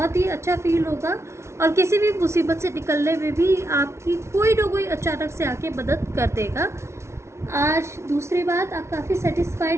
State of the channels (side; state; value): left; late; 0.13 ms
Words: ही अच्छा फील होगा, और किसी भी मुसीबत से निकलने में भी आपकी कोई ना कोई अचानक से आके मदद कर देगा। आज दूसरी बात, आप काफ़ी